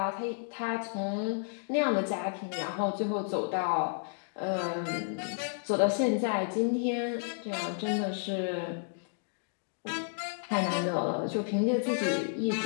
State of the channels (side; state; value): right; silent; digital silence